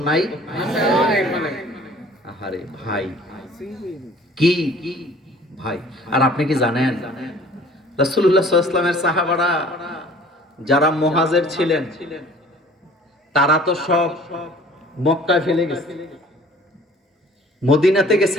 নাই? আহারে ভাই কি ভাই। আর আপনি কি জানেন রাসূলুল্লাহ সাল্লাল্লাহু আলাইহি ওয়াসাল্লামের সাহাবারা যারা মুহাজির ছিলেন তারা তো সব মক্কায় ফেলে গেছে, মদিনাতে গেছে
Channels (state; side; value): normal; both; correlation 0.50